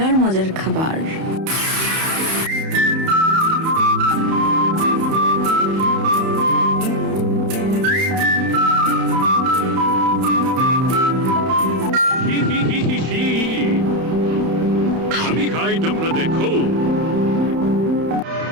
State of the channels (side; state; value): left; late; 31 ms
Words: মজার খাবার। আমি খাই, তোমরা দেখো।